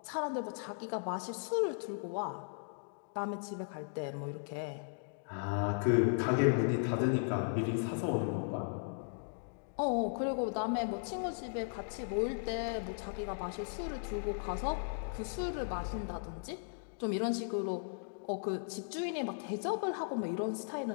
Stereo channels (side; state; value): right; silent; digital silence